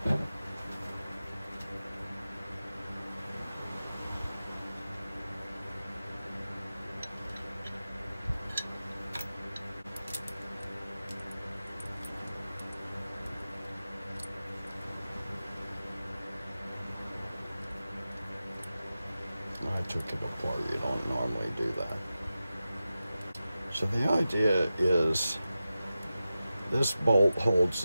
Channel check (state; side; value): inverted; both; correlation -0.93